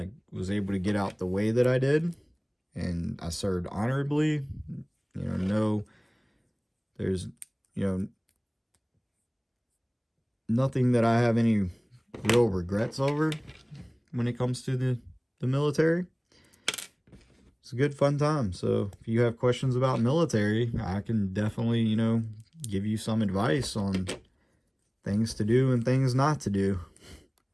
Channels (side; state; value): both; identical; correlation 1.00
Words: was able to get out the way that I did. And I served honorably. You know, no, there's, you know, nothing that I have any real regrets over when it comes to the military. It's a good fun time. So if you have questions about military, I can definitely, you know, give you some advice on things to do and things not to do.